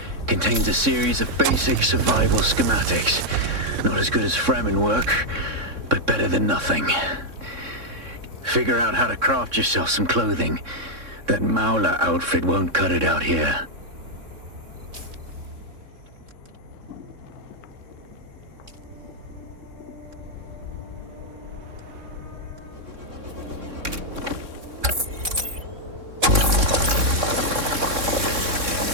contains a series of basic survival schematics. Not as good as Fremen work, but better than nothing. Figure out how to craft yourself some clothing. That Maula outfit won't cut it out here.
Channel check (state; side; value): late; left; 3.6 ms